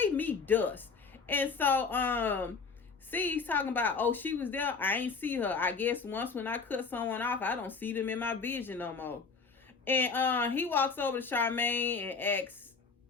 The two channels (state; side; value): quieter; right; 4.9 dB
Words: me dust. And so see, he's talking about, oh, she was there, I ain't see her. I guess once when I cut someone off, I don't see them in my vision no more. And he walks over to Charmaine and asks,